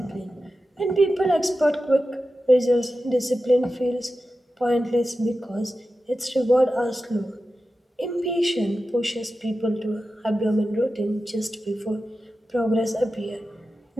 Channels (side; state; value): both; normal; correlation 0.93